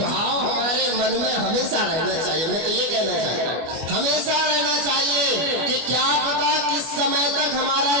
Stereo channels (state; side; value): late; left; 24 ms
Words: हमारे मन में हमेशा रहना चाहिए। मैं तो ये कहना चाहता हूँ हमेशा रहना चाहिए कि क्या पता किस समय तक हमारा